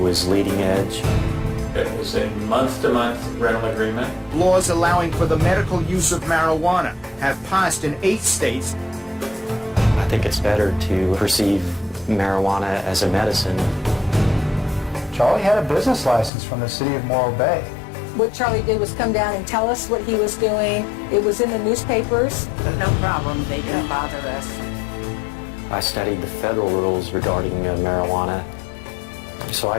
leading edge. It was a month-to-month rental agreement. Laws allowing for the medical use of marijuana have passed in 8 states. I think it's better to perceive marijuana as a medicine. Charlie had a business license from the city of Morro Bay. What Charlie did was come down and tell us what he was doing. It was in the newspapers. No problem, they didn't bother us. I studied the federal rules regarding marijuana, so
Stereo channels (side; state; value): right; drops out; at 16.3 s